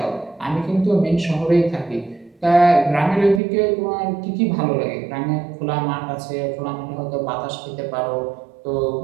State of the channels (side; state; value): left; drops out; at 3.4 s